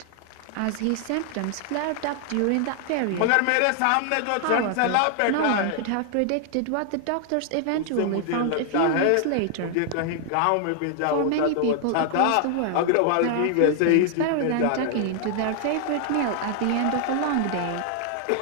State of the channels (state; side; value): different; both; correlation 0.00